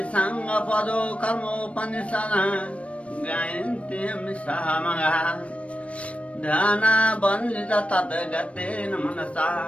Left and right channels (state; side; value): late; right; 0.063 ms